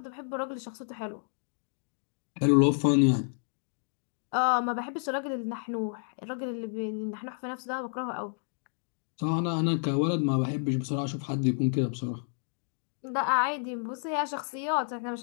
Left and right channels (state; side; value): silent; right; 57 dB below the other